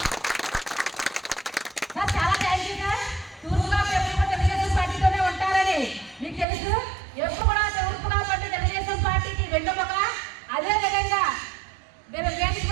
సార్. చాలా థ్యాంక్ యూ సార్. తూర్పు కాపు ఎప్పుడు తెలుగుదేశం పార్టీతోనే ఉంటారని మీకు తెలుసు. ఎప్పుడు కూడా తూర్పు కాపు అంటే తెలుగుదేశం పార్టీకి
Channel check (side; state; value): left; drops out; at 6.5 s